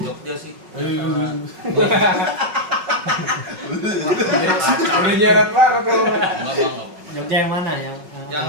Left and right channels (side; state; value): left; late; 5.4 ms